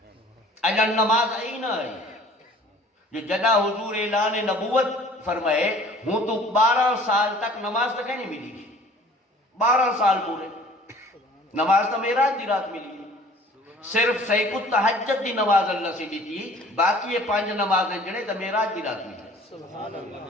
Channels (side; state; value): both; normal; correlation 0.50